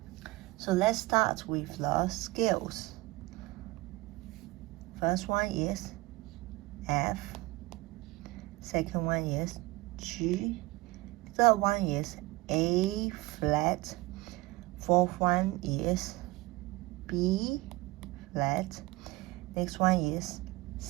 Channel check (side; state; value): left; quieter; 20.7 dB